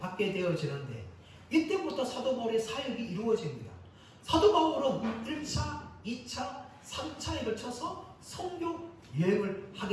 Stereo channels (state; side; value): identical; both; correlation 1.00